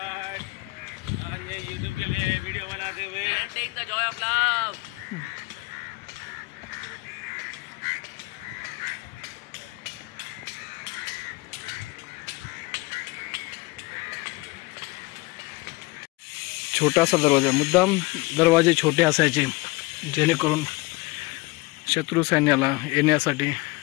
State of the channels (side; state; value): right; quieter; 23.6 dB